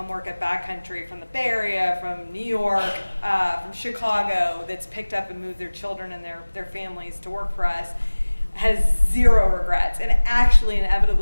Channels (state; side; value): inverted; both; correlation -1.00